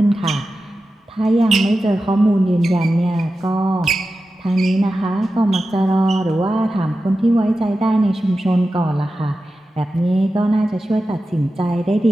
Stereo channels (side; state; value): both; normal; correlation 0.93